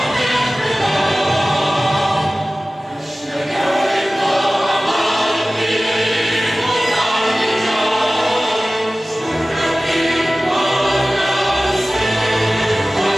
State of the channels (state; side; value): normal; both; correlation 0.97